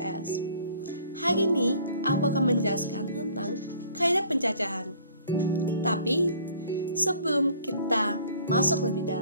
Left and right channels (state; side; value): inverted; both; correlation -0.54